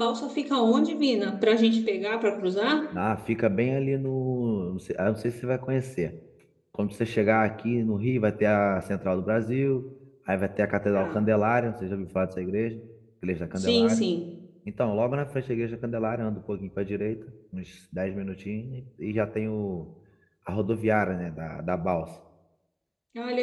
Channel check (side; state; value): both; identical; correlation 1.00